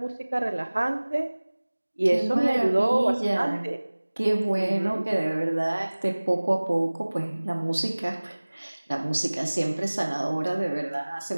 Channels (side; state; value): both; inverted; correlation -1.00